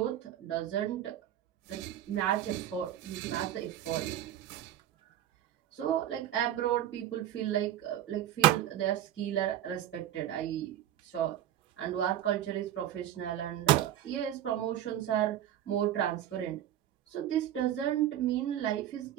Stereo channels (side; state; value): left; quieter; 11.7 dB